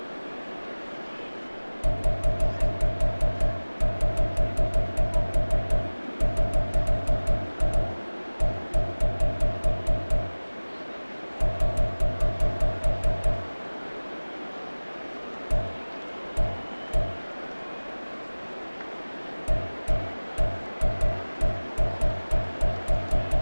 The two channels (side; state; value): both; inverted; correlation -1.00